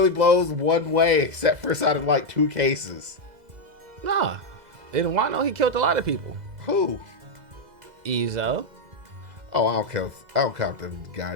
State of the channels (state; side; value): late; left; 2.0 ms